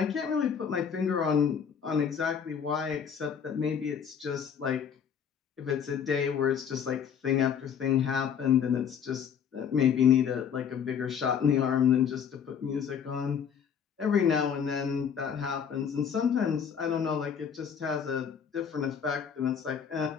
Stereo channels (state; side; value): quieter; right; 7.5 dB